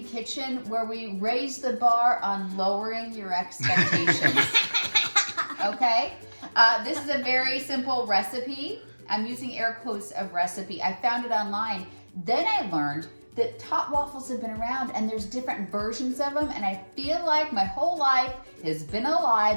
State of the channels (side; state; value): both; inverted; correlation -1.00